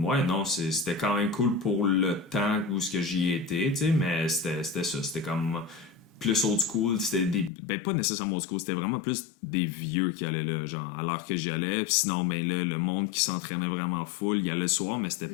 ouais, non, c'était quand même cool pour le temps où ce que j'y étais, tu sais, mais c'était ça. C'était comme plus old school. C'était pas nécessairement old school, c'était vraiment plus des vieux qui allaient là, genre, à l'heure que j'y allais. Puis sinon, ben là, le monde qui s'entraînait vraiment full, il y allait le soir, mais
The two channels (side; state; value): right; drops out; at 7.5 s